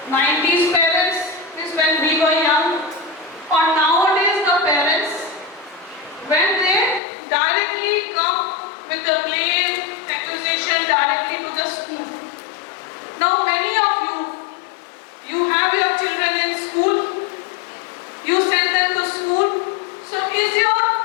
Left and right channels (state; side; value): drops out; right; at 7.0 s